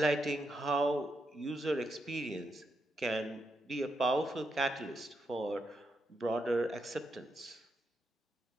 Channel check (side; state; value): both; normal; correlation 0.82